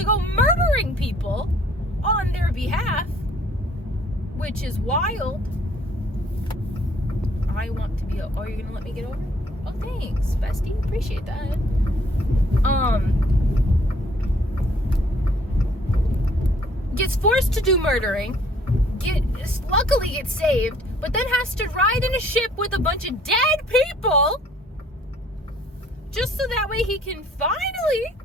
go murdering people on their behalf, which is wild. I want to be... Oh, you're going to let me get over? Oh, thanks, bestie. Appreciate that. Gets forced to do murdering. Luckily gets saved, but then has to ride in a ship with a bunch of dead people just so that way he can finally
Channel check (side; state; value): both; normal; correlation 0.60